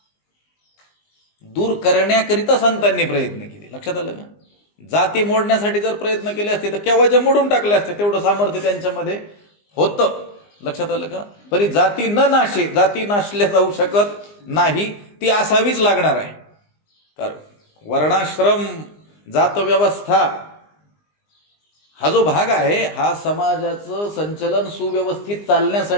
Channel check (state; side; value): late; right; 20 ms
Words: दूर करण्याकरिता संतांनी प्रयत्न केले. लक्षात आलं का? जाती मोडण्यासाठी जर प्रयत्न केले असते तर केव्हाच्या मोडून टाकले असते. तेवढं सामर्थ्य त्यांच्यामध्ये होतं. लक्षात आलं का? तरी जाती न नाशे, जाती नाशल्या जाऊ शकत नाही, ती असावीच लागणार आहे. कारण वर्णाश्रम जात व्यवस्था हा जो भाग आहे, हा समाजाचं संचलन सुव्यवस्थित